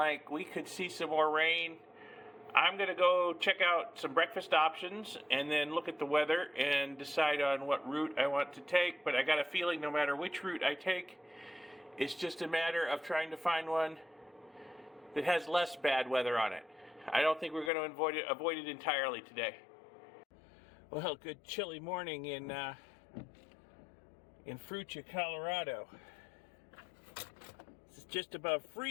we could see some more rain. I'm going to go check out some breakfast options and then look at the weather and decide on what route I want to take. But I got a feeling no matter which route I take, it's just a matter of trying to find one that has less bad weather on it. I don't think we're going to avoid it entirely today. Well, good chilly morning in Fruita, Colorado. It's just above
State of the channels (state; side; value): drops out; right; at 17.7 s